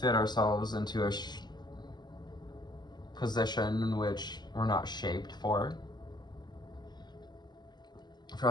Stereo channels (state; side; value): late; right; 0.21 ms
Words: ourselves into a position in which we're not shaped for.